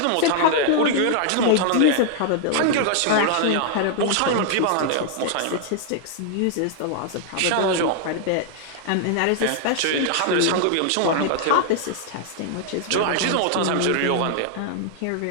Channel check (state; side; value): different; both; correlation 0.00